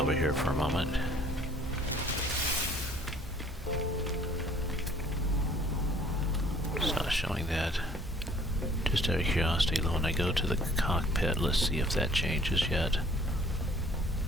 here for a moment. It's not showing that. Just out of curiosity, when I go to the cockpit, let's see if that changes yet.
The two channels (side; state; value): both; normal; correlation 0.56